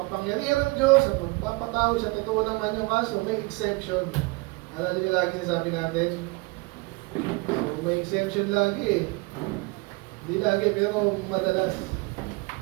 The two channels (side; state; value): left; quieter; 25.9 dB